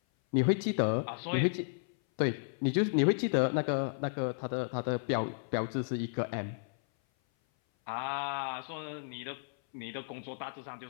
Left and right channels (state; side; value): silent; right; 56 dB below the other